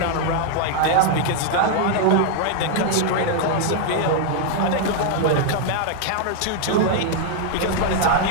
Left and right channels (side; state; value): both; different; correlation 0.00